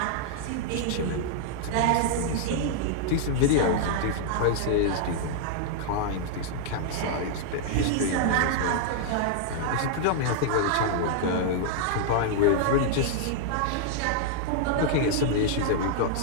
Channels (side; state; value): both; different; correlation -0.01